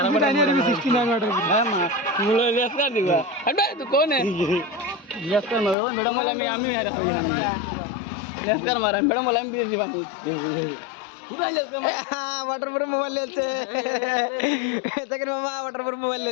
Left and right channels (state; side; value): drops out; right; at 5.8 s